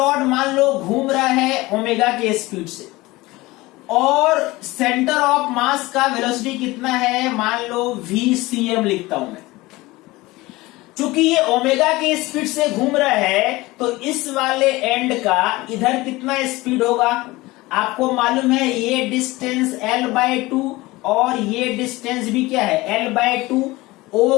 मान लो घूम रहा है ओमेगा के स्पीड से, और सेंटर ऑफ मास का वेलोसिटी कितना है, मान लो VCM लिखता हूं मैं। चूंकि ये ओमेगा के स्पीड से घूम रहा है तो इस वाले एंड का इधर कितना स्पीड होगा, आपको मालूम है ये डिस्टेंस L/2 और ये डिस्टेंस भी क्या है L/2।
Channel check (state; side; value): quieter; right; 20.3 dB